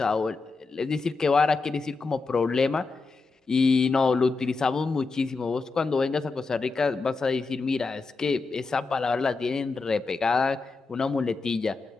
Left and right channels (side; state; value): right; quieter; 4.1 dB